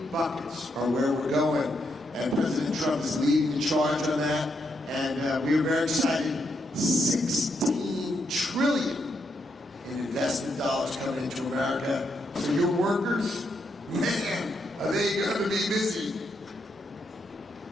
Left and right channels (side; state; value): both; normal; correlation 0.79